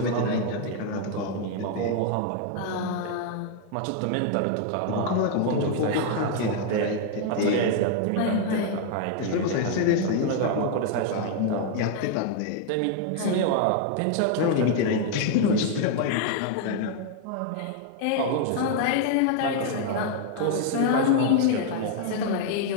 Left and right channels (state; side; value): different; both; correlation 0.00